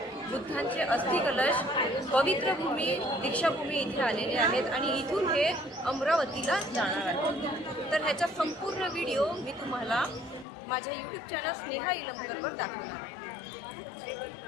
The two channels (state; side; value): drops out; right; at 10.5 s